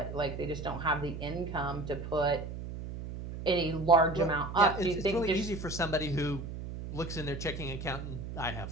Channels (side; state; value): right; noise; hum, 8 dB below the sound